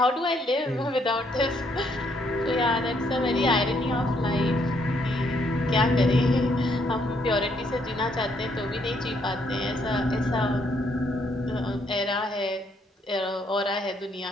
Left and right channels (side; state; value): both; normal; correlation 0.71